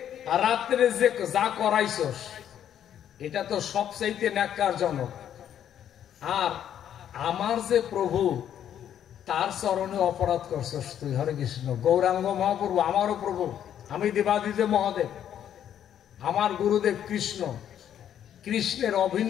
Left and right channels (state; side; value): quieter; right; 10.0 dB